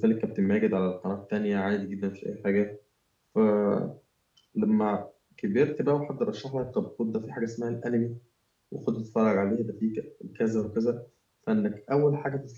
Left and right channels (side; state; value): both; identical; correlation 1.00